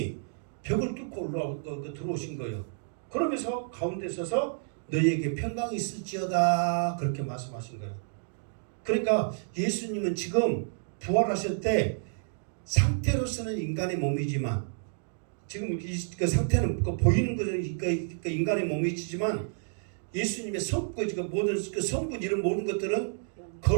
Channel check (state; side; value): silent; left; digital silence